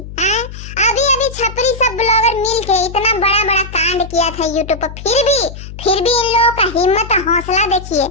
अभी अभी छपरी सब ब्लॉगर मिलके इतना बड़ा बड़ा कांड किया था यूट्यूब पर, फिर भी इन लोगों का हिम्मत हौसला देखिए।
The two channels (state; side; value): noise; left; hum, 12 dB below the sound